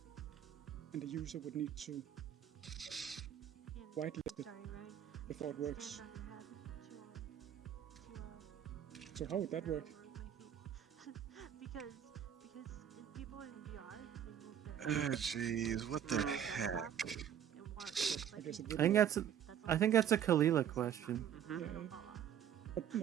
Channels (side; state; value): left; quieter; 9.5 dB